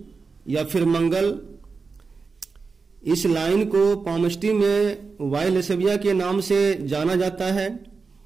या फिर मंगल, इस लाइन को पामष्टी में वाइलेसेविया के नाम से जाना जाता है।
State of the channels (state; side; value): quieter; left; 4.6 dB